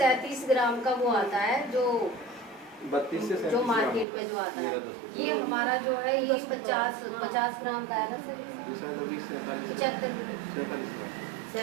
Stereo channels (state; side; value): drops out; left; at 4.0 s